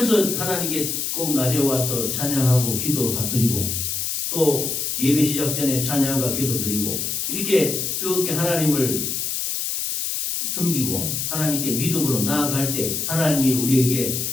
하나님께 꼭 낮에 와서 찬양하고 기도드리고 또 예배 시작 전에 찬양과 기도드리고 이렇게 뜨겁게 하나님을 섬기고 하나님께 믿음으로 나아갈 때 하나님이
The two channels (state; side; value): noise; left; hiss, 2 dB below the sound